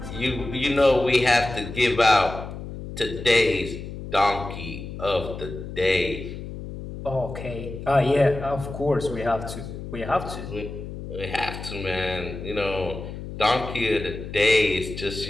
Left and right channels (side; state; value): left; noise; hum, 9 dB below the sound